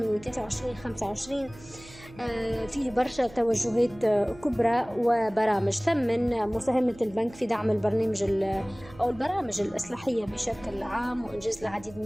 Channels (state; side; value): noise; right; hum, 20 dB below the sound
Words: 23-25 فيه برشا توجهات كبرى وبرامج. ثمن مساهمة البنك في دعم أو البرامج الإصلاحية بشكل عام وإنجاز العديد من